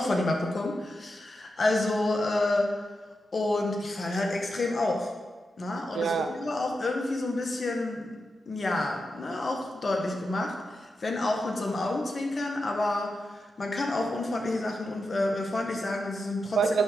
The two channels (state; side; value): normal; both; correlation 0.88